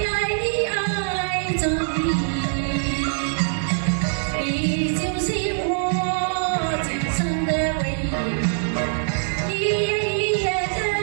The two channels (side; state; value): left; silent; digital silence